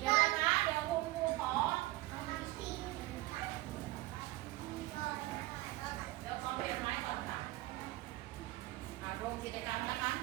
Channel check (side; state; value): left; quieter; 18.6 dB